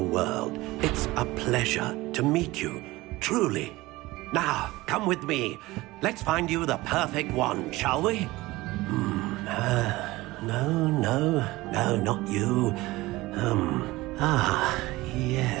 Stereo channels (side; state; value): left; quieter; 19.6 dB